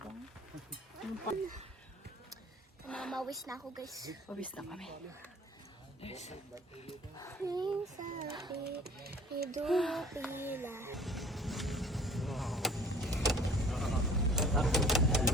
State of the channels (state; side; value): normal; both; correlation 0.50